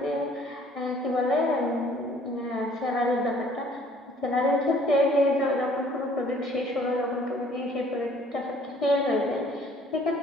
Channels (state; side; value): normal; both; correlation 0.57